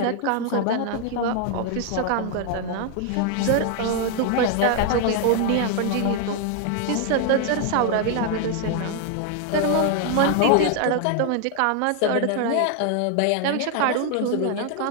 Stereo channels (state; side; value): different; both; correlation 0.00